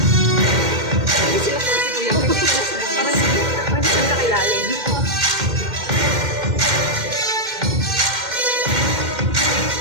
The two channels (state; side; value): late; left; 2.1 ms